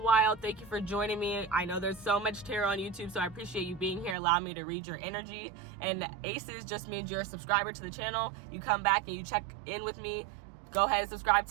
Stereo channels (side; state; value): left; drops out; at 4.2 s